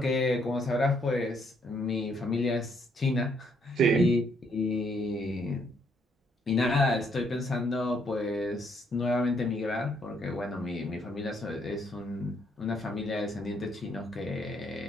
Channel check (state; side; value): normal; both; correlation 0.70